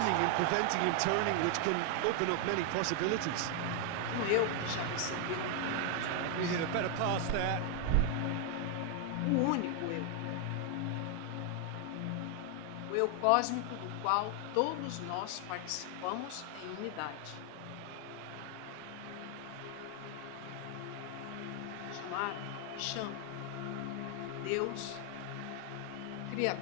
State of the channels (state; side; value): different; both; correlation 0.00